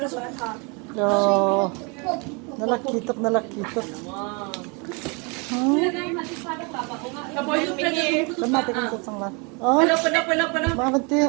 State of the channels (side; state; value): left; quieter; 31.8 dB